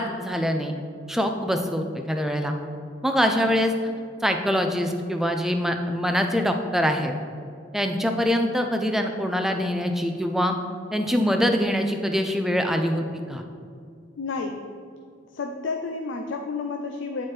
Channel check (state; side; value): normal; both; correlation 0.75